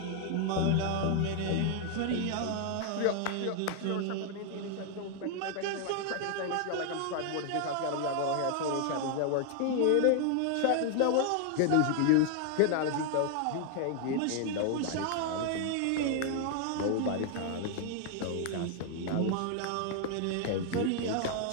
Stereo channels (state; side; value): different; both; correlation 0.00